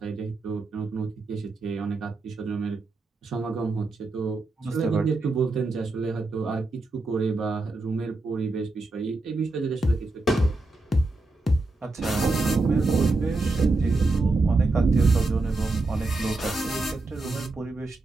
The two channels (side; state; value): left; quieter; 3.2 dB